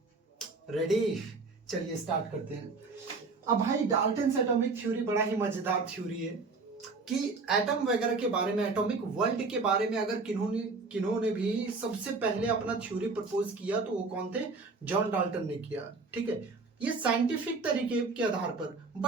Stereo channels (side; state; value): left; quieter; 4.0 dB